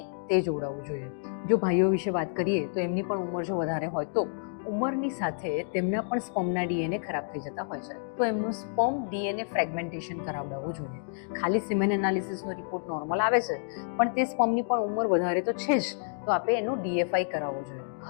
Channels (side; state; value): right; silent; digital silence